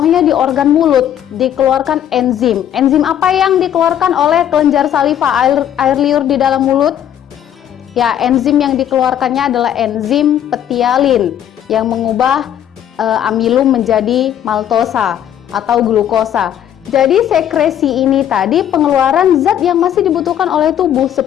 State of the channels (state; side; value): quieter; right; 10.3 dB